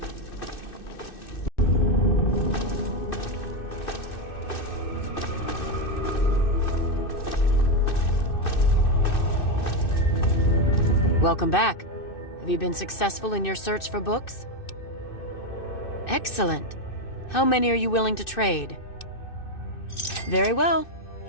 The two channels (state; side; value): late; right; 2.6 ms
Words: Welcome back. Have you been successful in your search for books? Excellent. How many are you willing to trade? Very well.